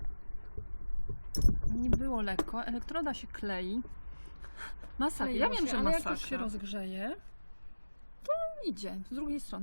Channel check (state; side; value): inverted; both; correlation -1.00